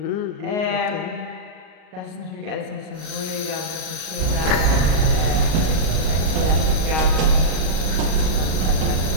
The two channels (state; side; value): late; left; 38 ms